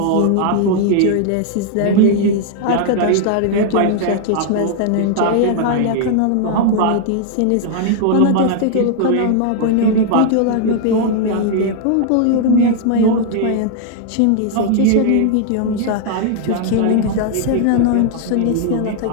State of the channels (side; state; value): both; different; correlation 0.00